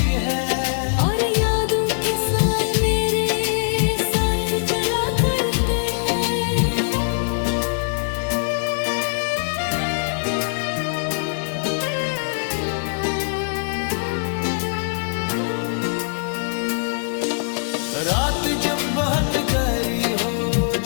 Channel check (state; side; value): silent; right; digital silence